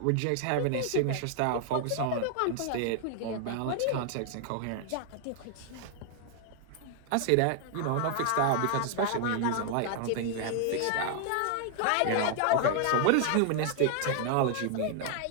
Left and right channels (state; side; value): different; both; correlation 0.00